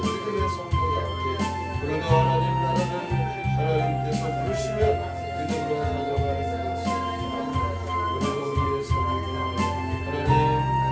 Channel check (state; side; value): identical; both; correlation 1.00